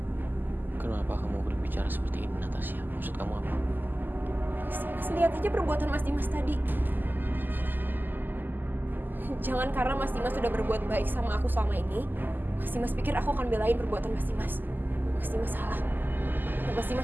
Kenapa kamu berbicara seperti ini, Natasha? Maksud kamu apa? Mas lihat aja perbuatan Mas Dimas tadi. Jangan karena Mas Dimas sudah berbuat baik sama aku selama ini, Mas Dimas pikir aku akan belain perbuatan Mas Dimas. Mas Dimas salah. Dan Mas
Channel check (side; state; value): left; late; 0.089 ms